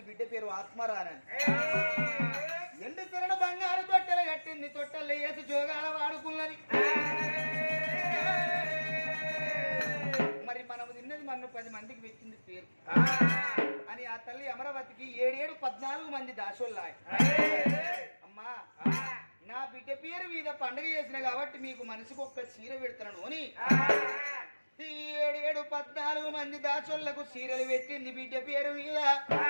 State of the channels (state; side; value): inverted; both; correlation -1.00